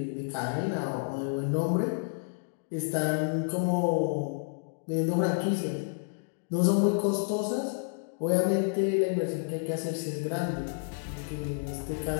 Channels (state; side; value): silent; right; digital silence